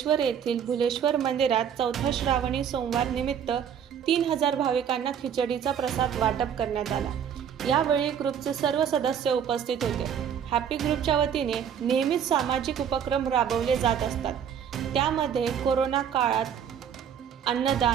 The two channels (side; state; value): left; quieter; 8.4 dB